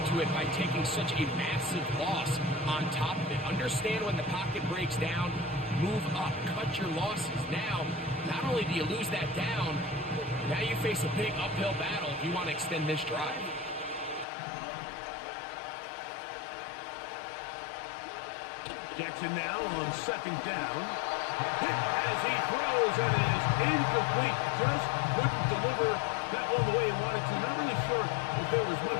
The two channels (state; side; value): drops out; right; at 14.2 s